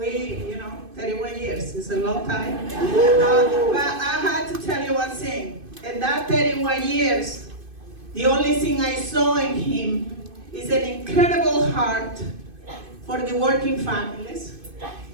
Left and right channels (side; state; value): left; late; 2.5 ms